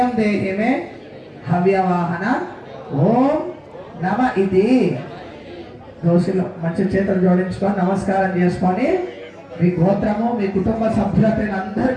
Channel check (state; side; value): identical; both; correlation 1.00